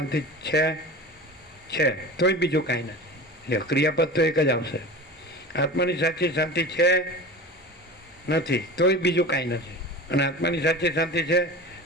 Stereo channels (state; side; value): normal; both; correlation 0.34